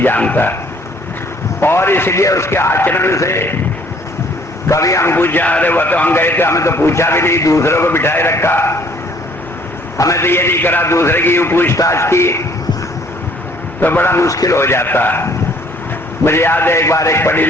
जानता है। और इसलिए उसके आचरण से कभी हम पूछा, अरे वो तो हम गए थे, हमें तो पूछा भी नहीं, दूसरों को बिठाए रखा, हमें तो ये नहीं करा, दूसरे की यूं पूछताछ की, तो बड़ा मुश्किल हो जाता है। मुझे याद है एक बार एक पढ़ी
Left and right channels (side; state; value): both; normal; correlation 0.60